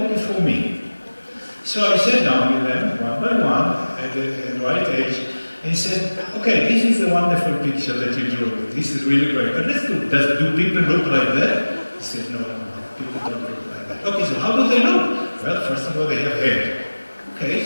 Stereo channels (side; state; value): both; inverted; correlation -1.00